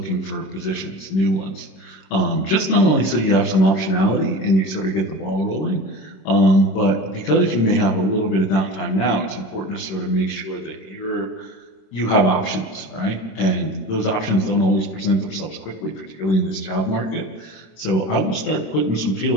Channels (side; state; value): right; late; 26 ms